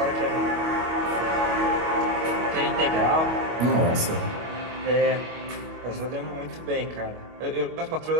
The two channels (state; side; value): late; left; 25 ms